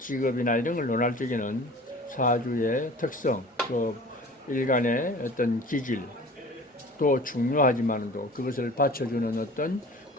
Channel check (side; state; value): both; normal; correlation 0.43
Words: 이런 걸 논할 적에는 사주의 특성, 또 일간의 어떤 기질 또 중요하지만도 그것을 받쳐주는 어떤